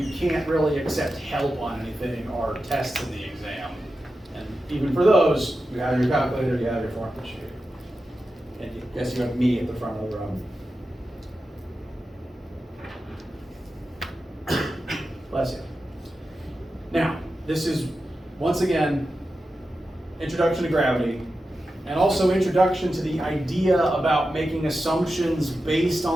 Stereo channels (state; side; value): normal; both; correlation 0.91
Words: can't really accept help on anything are tests in the exam. And even for those, you have your calculator, you have your formula sheet. And yes, you have me at the front of the room. Bless you. Now, this is, once again, introduction to gravity, and also introduction to the idea about making assumptions based